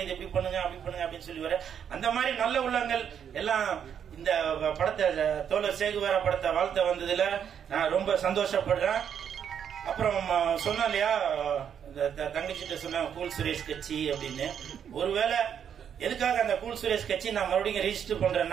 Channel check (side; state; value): left; quieter; 8.3 dB